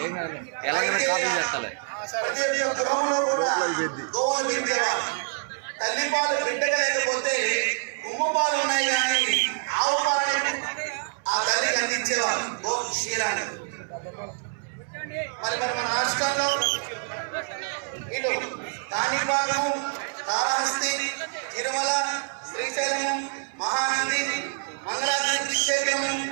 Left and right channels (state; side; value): silent; left; 61 dB below the other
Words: ప్రతి ఒక్క గృహంలో కూడా గోవులు పెంచేవారు. తల్లిపాలు బిడ్డగా లేకపోతే ఉమ్మ పాలు ఉన్నాయి కానీ ఆవు పాలని ఆ తల్లికి అందించేవారు, గో క్షీరాన్ని. మరి మన రాష్ట్రంలో ఇటు కాణిపాకము, కాళహస్తి, తిరుమల, శ్రీశైలము, మహానంది, మంగళాద్రి క్షేత్రము,